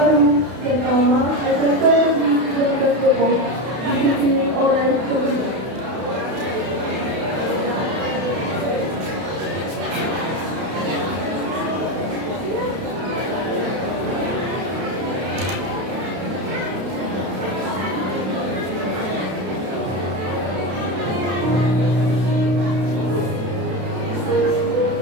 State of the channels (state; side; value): late; left; 32 ms